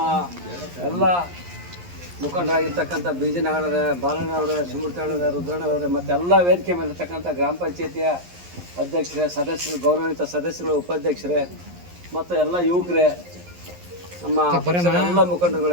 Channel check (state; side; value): late; left; 11 ms